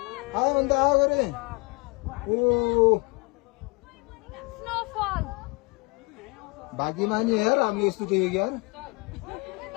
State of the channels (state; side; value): quieter; right; 29.9 dB